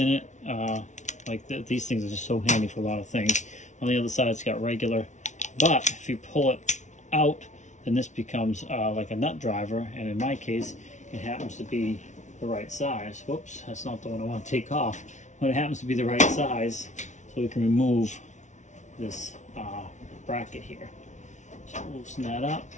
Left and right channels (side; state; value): right; late; 0.35 ms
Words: it. These things are just so handy for a lot of things. On the other side it's got regular, but if you pull it out, then this becomes like a nut driver, and in my case it happens to be the right size. Whoops, that's not the one I want to take off, but it happens to be the right size, so we can remove this bracket here. So loosen that up,